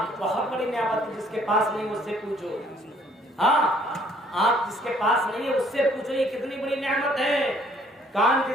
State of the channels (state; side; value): normal; both; correlation 0.62